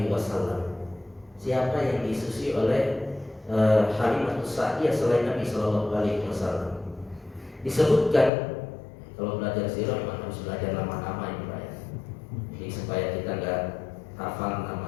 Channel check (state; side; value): drops out; right; at 8.3 s